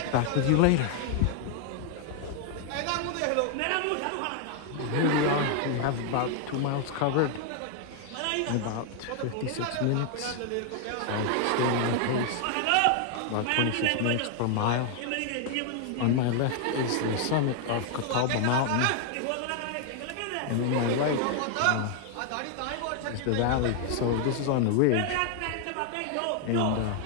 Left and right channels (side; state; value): both; different; correlation 0.00